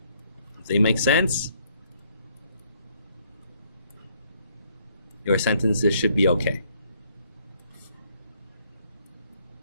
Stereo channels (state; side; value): inverted; both; correlation -0.67